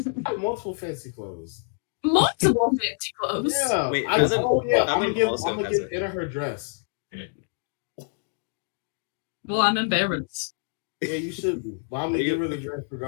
I have multiple fancy clothes. Multiple fancy clothes. Yeah. Wait, I'm Fathom gonna give also has give a- Anna her dress. Well, I'm embarrassed. Yeah, you should be. But I'm Are gonna you- give her the dress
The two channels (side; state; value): right; silent; digital silence